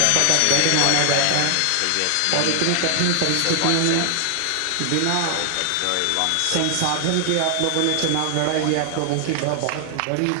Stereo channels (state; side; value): different; both; correlation 0.00